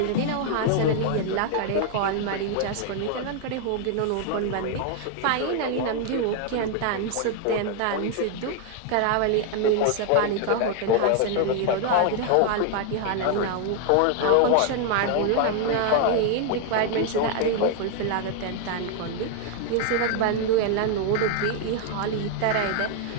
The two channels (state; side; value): different; both; correlation 0.00